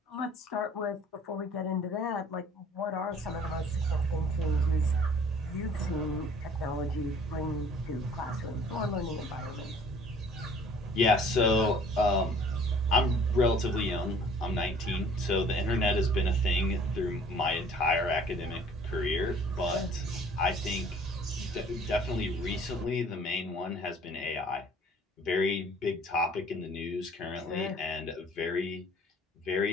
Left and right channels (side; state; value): both; normal; correlation 0.53